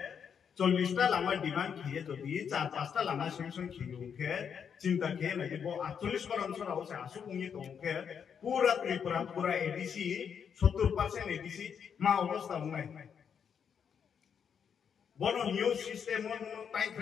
40টা লামা ডিমান্ড খেয়ে যদি 4-5টা লামা সেনশন খেয়ে ওকে চিন্তা খেয়ে নাকি বো 48 বার অঞ্চল আছে আসু উনি তো ওকে পুরা ত্রিপুরা পুরা এডিসি 70% এডিসি মা অবস্থা নাই বড় নিউজ সিস্টেম মন টাইম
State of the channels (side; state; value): right; quieter; 7.3 dB